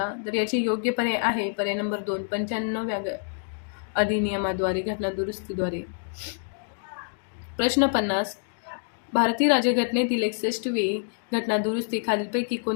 तर याची योग्य पर्याय आहे पर्याय नंबर 2. 95व्या अधिनियमाद्वारे घटना दुरुस्तीद्वारे. प्रश्न 50. भारतीय राज्यघटनेतील 61वी घटना दुरुस्ती खालीलपैकी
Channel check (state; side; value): silent; right; 60 dB below the other